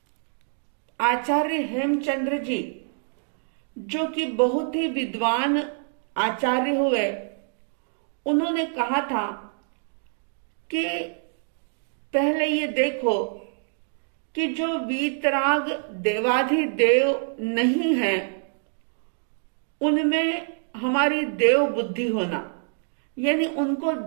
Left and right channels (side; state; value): left; silent; 61 dB below the other